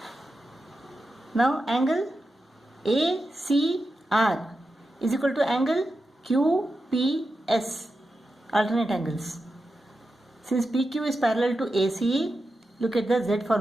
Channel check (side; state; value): both; normal; correlation 0.90